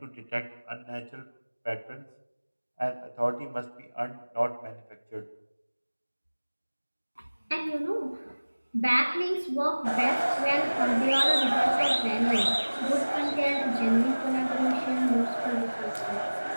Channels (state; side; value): inverted; both; correlation -1.00